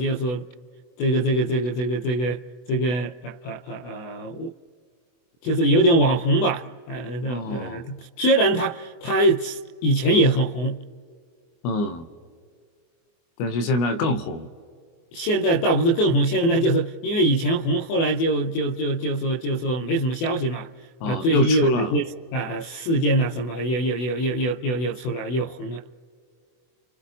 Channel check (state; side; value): late; right; 24 ms